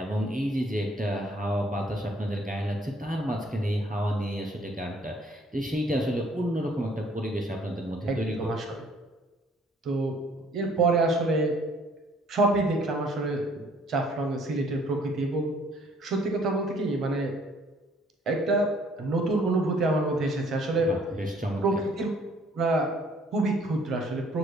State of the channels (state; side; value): normal; both; correlation 0.60